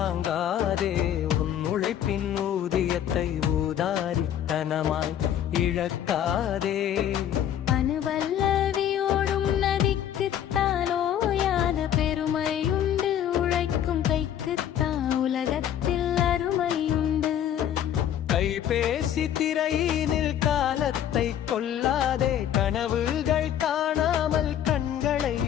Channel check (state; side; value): quieter; right; 10.3 dB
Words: உன் உழைப்பின் ஊதியத்தை ஊதாரித்தனமாய் இழக்காதே. அணுவல்லவியோடும் நதிக்குத்தான் ஓயாத பெருமையுண்டு, உழைக்கும் கைக்குத்தான் உலகத்தில் அருமையுண்டு. கைபேசி திரையினில் காலத்தை கொல்லாதே, கனவுகள் காணாமல் கண்களை